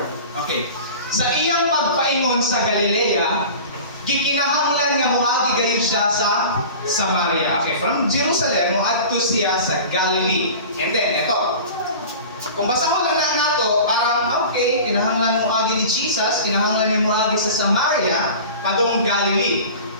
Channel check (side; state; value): both; inverted; correlation -0.37